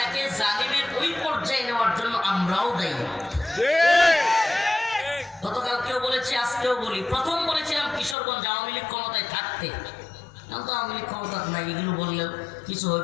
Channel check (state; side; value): drops out; right; at 8.2 s